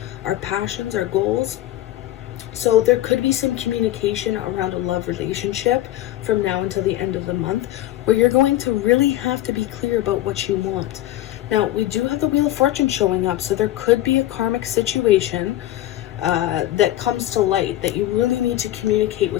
our passions, our goals. So there could be some communication around a love relationship from now until the end of the month where you're going to really have to be clear about what you want. Now, we do have the Wheel of Fortune showing up, so there could be a karmic situation that comes to light that you really need to communicate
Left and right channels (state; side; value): quieter; right; 14.3 dB